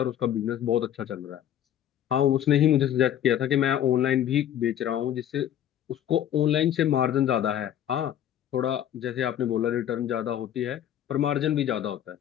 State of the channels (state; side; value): quieter; right; 10.7 dB